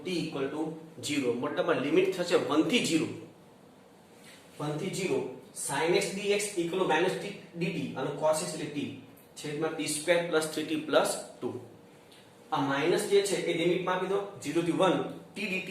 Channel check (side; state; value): both; identical; correlation 1.00